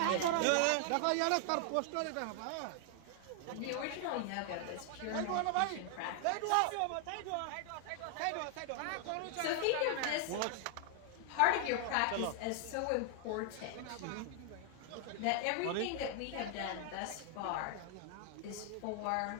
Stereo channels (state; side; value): different; both; correlation 0.00